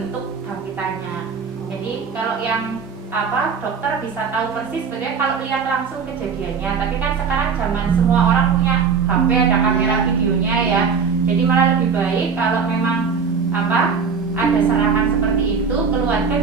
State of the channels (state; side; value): quieter; left; 5.8 dB